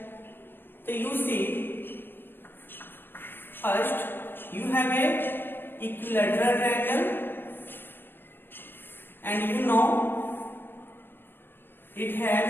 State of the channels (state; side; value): late; right; 0.10 ms